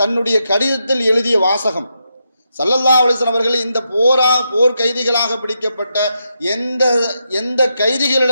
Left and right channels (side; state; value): both; inverted; correlation -0.83